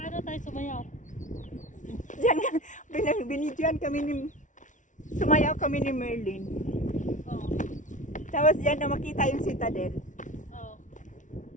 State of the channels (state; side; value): late; right; 0.37 ms